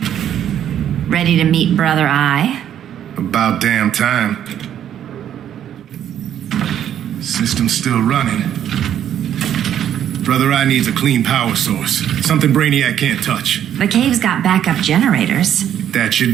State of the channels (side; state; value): left; quieter; 10.2 dB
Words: Ready to meet Brother Eye? About damn time. System's still running. Brother Eye needs a clean power source. Something Brainiac can't touch. The cave's got backup generators. That